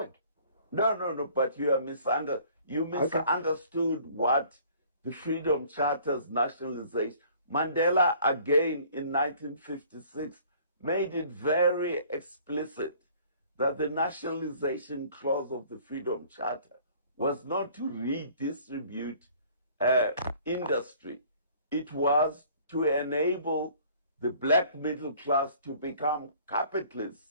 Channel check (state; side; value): inverted; both; correlation -0.54